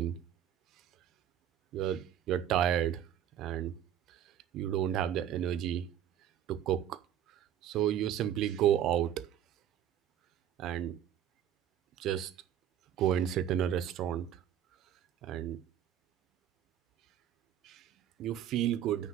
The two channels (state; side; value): quieter; left; 10.4 dB